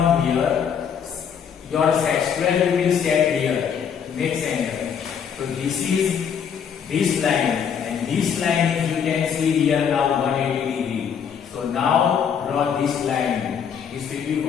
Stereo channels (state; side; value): quieter; right; 7.6 dB